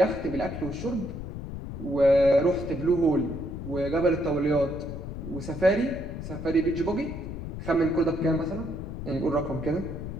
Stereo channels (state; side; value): noise; left; rumble, 8 dB below the sound